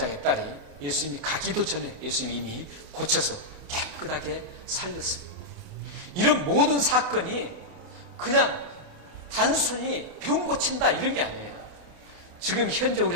딸이 예수님이 가기도 전에 예수님이 이미 고쳐서 깨끗하게 살렸습니다. 이런 모든 사건이 그냥 단순히 병 고친다 이런 게 아니에요. 지금 현재 우리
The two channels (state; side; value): late; left; 28 ms